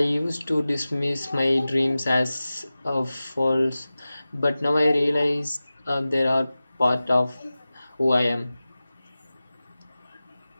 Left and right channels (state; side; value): inverted; both; correlation -0.96